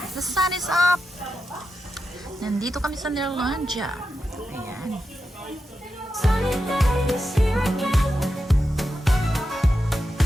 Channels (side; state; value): both; normal; correlation 0.89